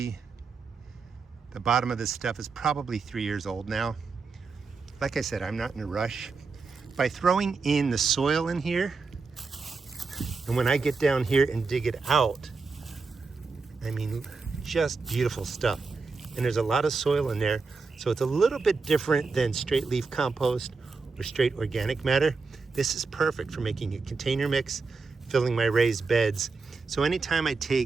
the bottom of this stuff is probably 3 years old now. Like I said, I'm not in a rush. By throwing in the soil in here, and when I get down here and dig it out, I mean, just beautiful stuff. And there's a lot of soil in there, so it's a little bit different than straight leaf compost or straight organic matter. This is perfect for making a container mix, filling my raised beds. So anytime I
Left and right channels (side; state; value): left; quieter; 4.4 dB